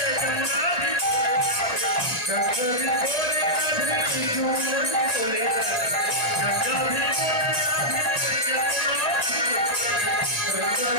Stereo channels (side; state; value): right; late; 1.9 ms